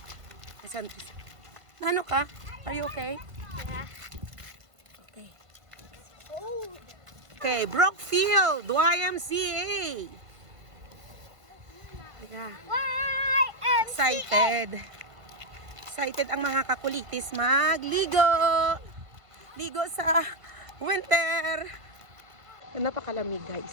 Asan? Ano ka? Are you okay? Yeah. Okay. Oh. Okay, Brookfield YMCA. Yeah. Excited ang mga kakulitis magligo. Ligo sa winter. Napakalamig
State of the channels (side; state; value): left; late; 1.5 ms